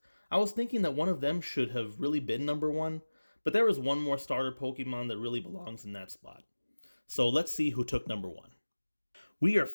I was thinking that one of them should have really been number one, but there is one more starter Pokemon that really belongs in that spot. So let's see who took number one. We are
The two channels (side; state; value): both; inverted; correlation -1.00